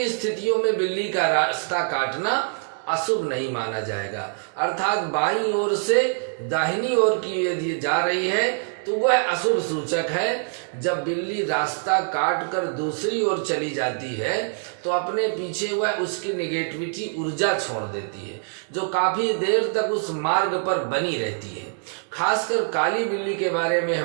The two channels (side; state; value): left; silent; 62 dB below the other